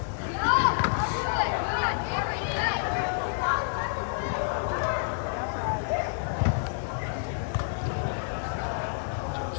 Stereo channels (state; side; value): silent; right; digital silence